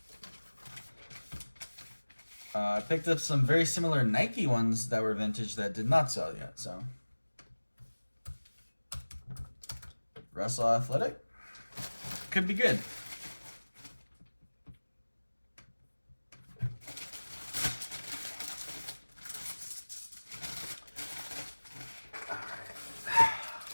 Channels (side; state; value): both; inverted; correlation -1.00